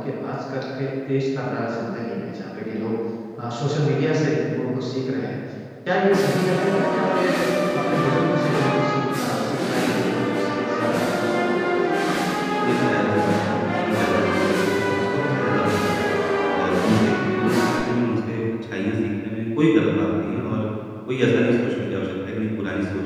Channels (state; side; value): identical; both; correlation 1.00